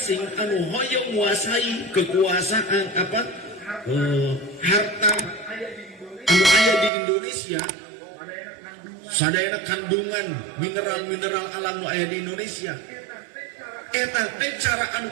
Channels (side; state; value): left; drops out; at 6.9 s